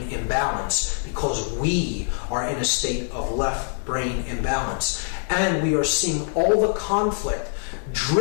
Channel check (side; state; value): right; silent; 63 dB below the other